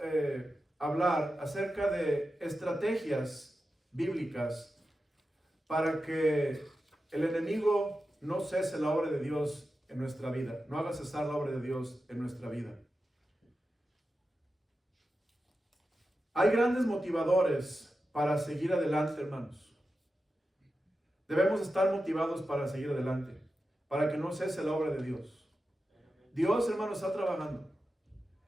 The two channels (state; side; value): normal; both; correlation 0.91